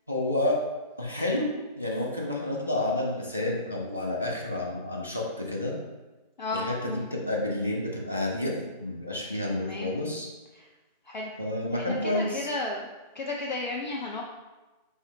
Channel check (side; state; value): both; inverted; correlation -0.41